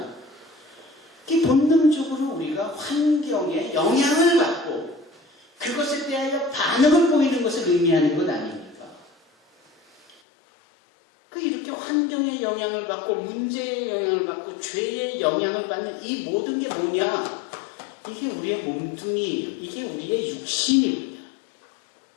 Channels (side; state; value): right; drops out; at 10.2 s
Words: 그 본능적으로 우리가 환경에 영향을 받고 그것에 대하여 반응을 보이는 것을 의미하는 것 아닙니까? 이렇게 환경의 영향을 받고 문제의 영향을 받고 죄의 영향을 받는 이 모든 게 뭐냐? 이게 우리의 몸뚱이예요. 이게 우리의 육신입니다.